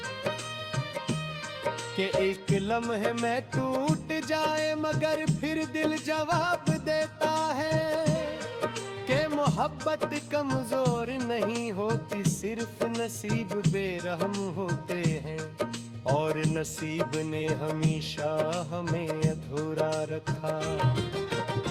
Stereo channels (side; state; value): both; identical; correlation 1.00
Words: कि एक लम्हे में टूट जाए मगर फिर दिल जवाब देता है कि मोहब्बत कमजोर नहीं होती, सिर्फ नसीब बेरहम होते हैं और नसीब ने हमेशा हमें अधूरा रखा।